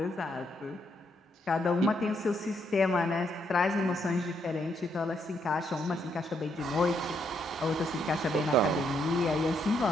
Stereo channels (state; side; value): normal; both; correlation 0.75